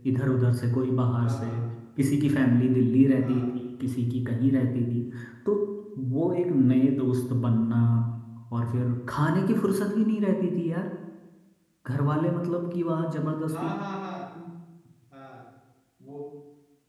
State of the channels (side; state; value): both; identical; correlation 1.00